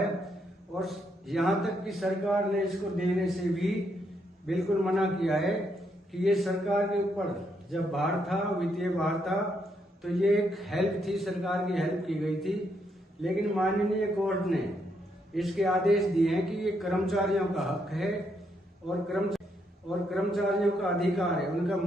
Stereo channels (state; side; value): normal; both; correlation 0.76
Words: और यहाँ तक कि सरकार ने इसको देने से भी बिल्कुल मना किया है कि ये सरकार के ऊपर जब भार था, वित्तीय भार था, तो ये एक हेल्प थी, सरकार की हेल्प की गई थी। लेकिन माननीय कोर्ट ने इसके आदेश दिए हैं कि ये कर्मचारियों का हक है और कर्मचारियों का अधिकार है, उनका